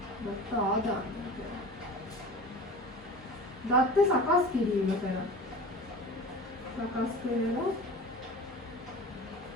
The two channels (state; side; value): normal; both; correlation 0.36